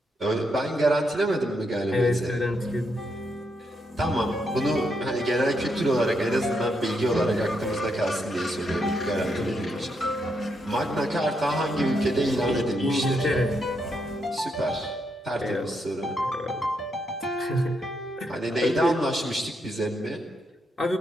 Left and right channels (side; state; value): both; normal; correlation 0.79